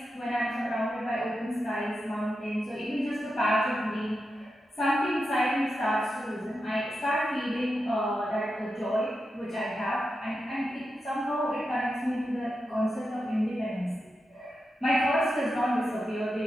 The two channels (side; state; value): both; normal; correlation 0.88